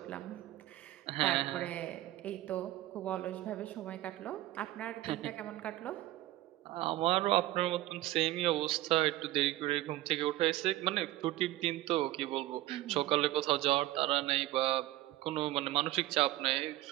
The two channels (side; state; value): left; quieter; 16.3 dB